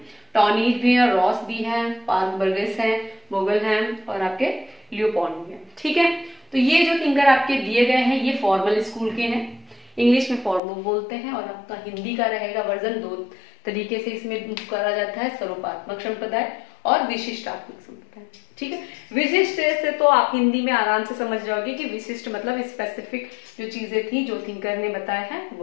टॉनीज भी हैं, रॉस भी हैं, पार्क बर्गेस हैं, बोगल हैं, और आपके लियोपॉन्ड भी हैं, ठीक है। तो ये जो थिंकर आपके दिए गए हैं ये फॉर्मल स्कूल के हैं। इंग्लिश में फॉर्मल बोलते हैं, और आपका हिंदी का रहेगा वर्जन 2 तरीके से इसमें करा जाता है, स्वरूपात्मक संप्रदाय और विशिष्टात्मक संप्रदाय, ठीक है। विशिष्ट से तो आप हिंदी में आराम से समझ जाओगे कि विशिष्ट मतलब स्पेसिफिक जो चीजें थी जो थिंकर ने बताया है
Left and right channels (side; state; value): right; drops out; at 10.6 s